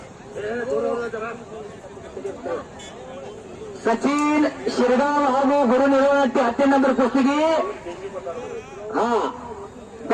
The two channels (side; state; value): both; identical; correlation 1.00